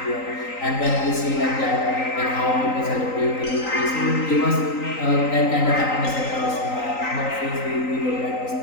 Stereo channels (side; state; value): right; late; 3.9 ms